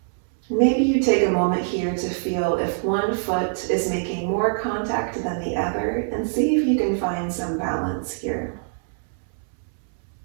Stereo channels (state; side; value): silent; left; 63 dB below the other